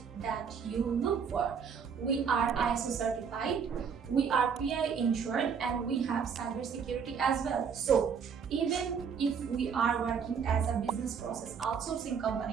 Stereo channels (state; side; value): quieter; left; 6.6 dB